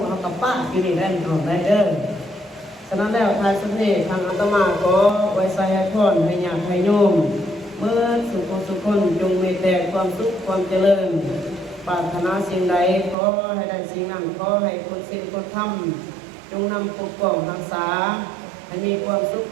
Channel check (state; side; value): drops out; left; at 13.2 s